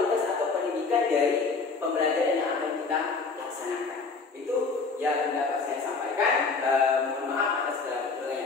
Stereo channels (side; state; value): right; quieter; 4.4 dB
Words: atau pendidikan dari pembelajaran yang akan kita laksanakan. Itu yang dapat saya sampaikan. Mohon maaf atas segala